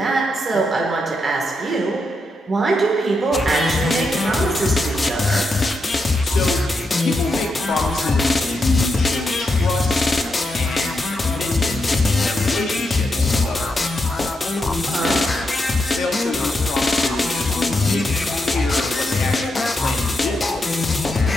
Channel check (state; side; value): normal; both; correlation 0.84